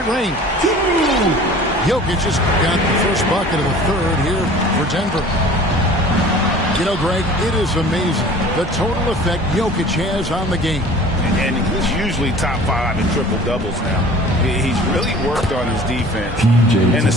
range. Jokic just got the first bucket of the third here for Denver. You know, Greg, it is amazing the total effect Jokic has on the game. And he's usually top 5 in triple-doubles now. He's really worked on his defense. And the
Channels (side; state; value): both; normal; correlation 0.45